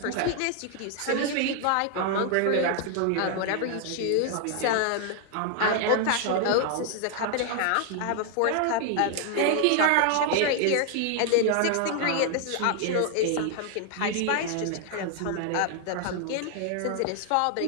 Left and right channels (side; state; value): both; different; correlation 0.00